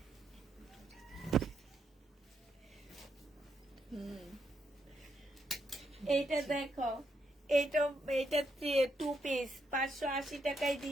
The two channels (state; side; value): normal; both; correlation 0.79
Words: এইটা দেখো, এইটা 2 পিস 580 টাকায়